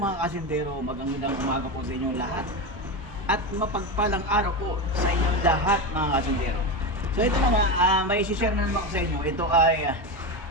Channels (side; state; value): both; normal; correlation 0.17